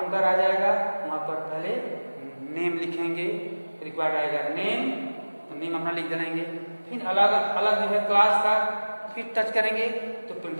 आ जाएगा। वहां पर पहले नेम लिखेंगे, रिक्वायर्ड आएगा नेम, तो नेम अपना लिख देंगे। फिर अलग अलग जो है क्लास का, फिर टच करेंगे तो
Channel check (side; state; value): both; inverted; correlation -1.00